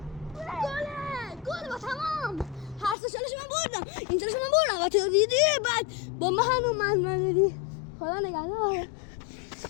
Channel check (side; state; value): right; drops out; at 3.0 s